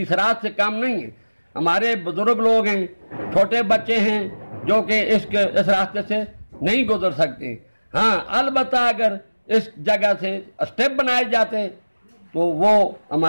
राज से काम नहीं है। हमारे बुजुर्ग लोग हैं, छोटे बच्चे हैं जो कि इस रास्ते से नहीं गुजर सकते। हाँ, अलबत्ता अगर इस जगह से स्टेप बनाए जाते तो वो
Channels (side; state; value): both; inverted; correlation -1.00